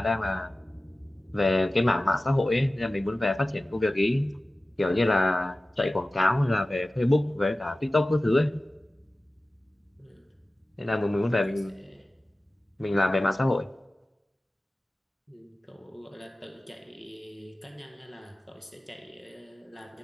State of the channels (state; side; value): normal; both; correlation 0.97